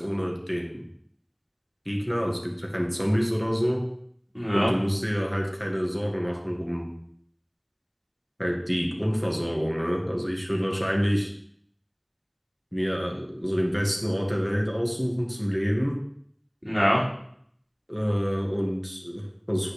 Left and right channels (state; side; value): identical; both; correlation 1.00